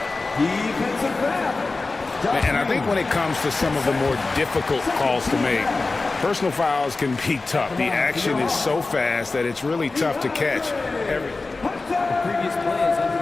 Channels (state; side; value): quieter; right; 3.6 dB